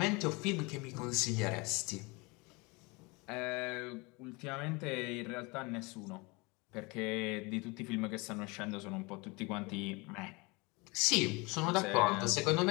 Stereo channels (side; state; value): right; quieter; 26.8 dB